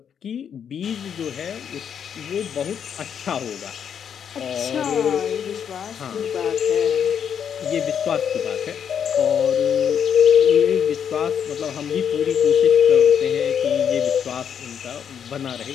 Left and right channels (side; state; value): right; quieter; 8.1 dB